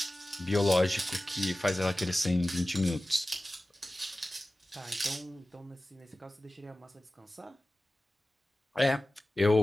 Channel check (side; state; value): both; normal; correlation 0.96